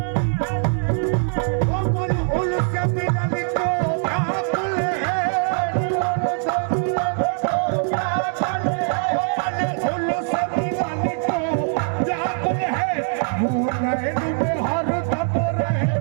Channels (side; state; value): left; silent; digital silence